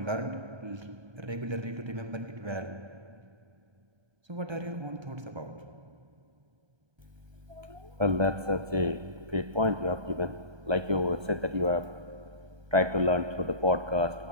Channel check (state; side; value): late; left; 1.3 ms